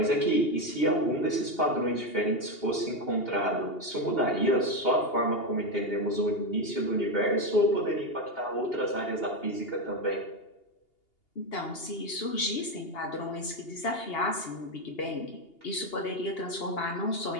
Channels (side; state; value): right; late; 2.8 ms